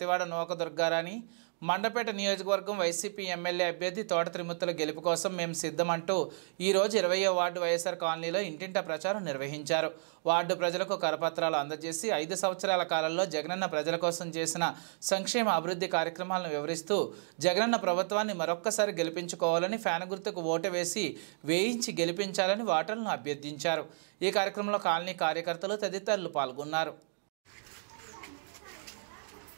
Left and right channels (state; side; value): silent; left; digital silence